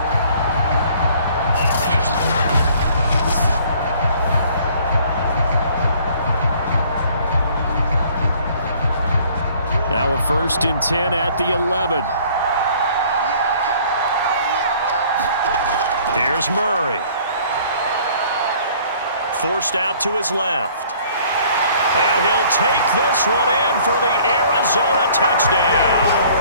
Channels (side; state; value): both; inverted; correlation -0.56